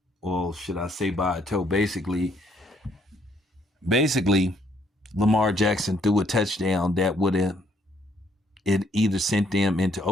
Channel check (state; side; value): normal; both; correlation 0.68